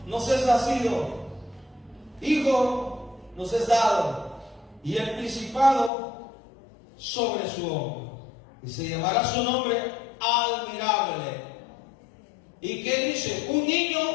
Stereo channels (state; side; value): drops out; right; at 5.9 s